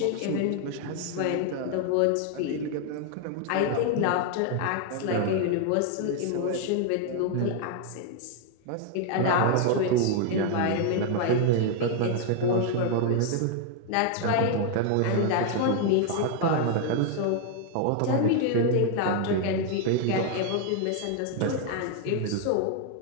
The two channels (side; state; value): both; different; correlation 0.00